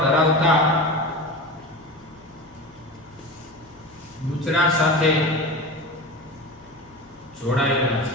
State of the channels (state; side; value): noise; left; hum, 28 dB below the sound